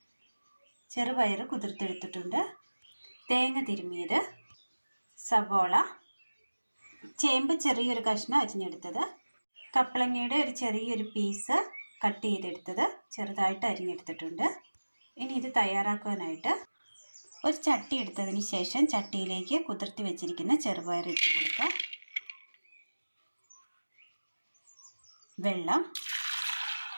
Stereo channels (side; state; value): both; inverted; correlation -1.00